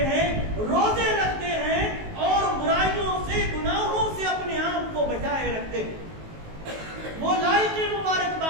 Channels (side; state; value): left; late; 19 ms